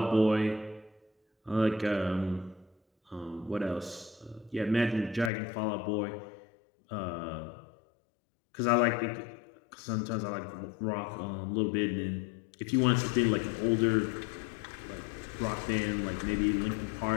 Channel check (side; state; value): right; drops out; at 5.3 s